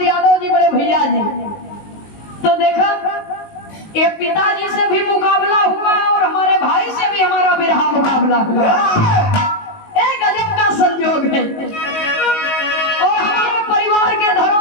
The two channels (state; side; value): late; right; 19 ms